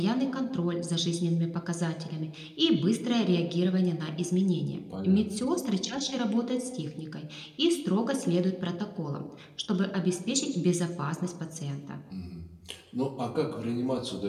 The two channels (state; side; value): identical; both; correlation 1.00